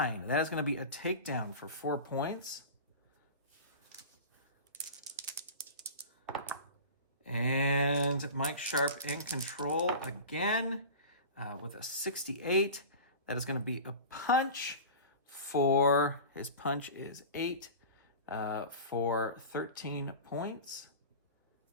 That is going to be a takedown for 4 points. And Mike Sharp in control again with a 68. That is going to be a punch. His punch is 8 for 13 points.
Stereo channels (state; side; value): inverted; both; correlation -0.34